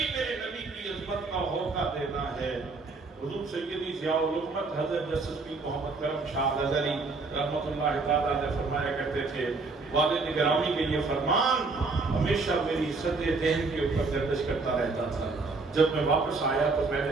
میرے نبی کی عظمت کا ہوکا دینا ہے۔ حضور سیدی ضیاء الحکمت حضرت جسٹس پیر محمد کرم شاہ نظری رحمۃ اللہ تعالیٰ نے فرمایا کرتے تھے، والد گرامی کے یہ فرمان ہمیشہ میری عزت ذہن کے اوپر گردش کرتا رہتا تھا۔ جب میں واپس آیا تو میں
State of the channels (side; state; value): left; quieter; 3.9 dB